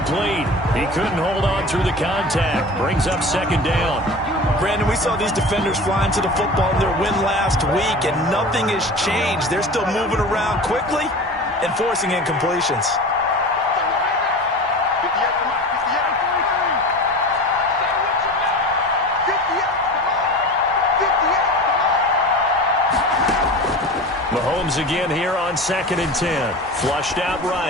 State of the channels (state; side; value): normal; both; correlation 0.34